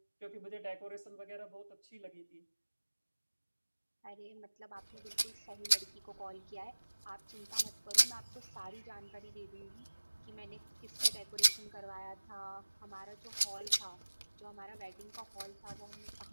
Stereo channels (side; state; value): both; inverted; correlation -1.00